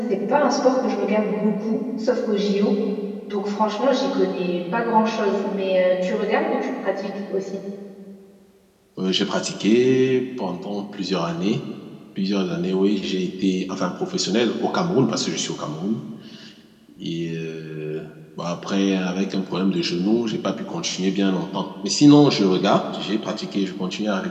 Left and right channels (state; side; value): identical; both; correlation 1.00